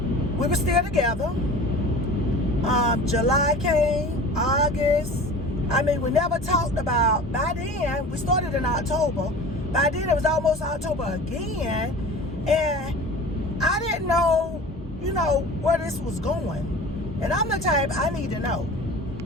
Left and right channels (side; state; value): both; normal; correlation 0.39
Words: We were still together. July came, August. I mean, we never talked about, by then, we started in October. By then, it was almost October again. And I didn't know, where this was going. And I'm the type, I need to know.